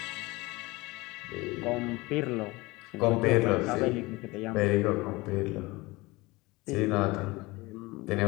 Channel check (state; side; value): quieter; right; 22.2 dB